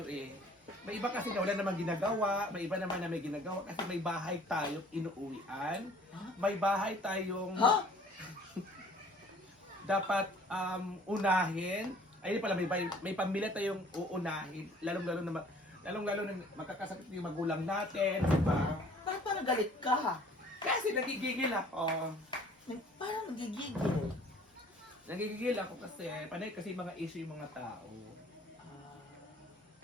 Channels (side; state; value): both; normal; correlation 0.53